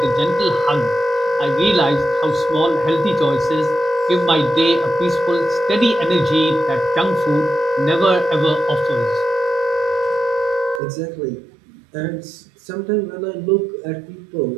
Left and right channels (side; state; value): left; drops out; at 10.8 s